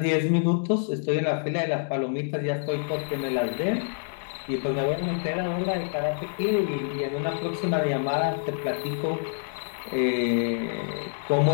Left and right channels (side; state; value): right; silent; 59 dB below the other